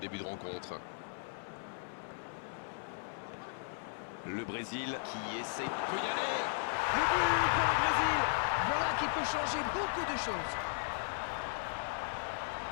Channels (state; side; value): silent; right; 54 dB below the other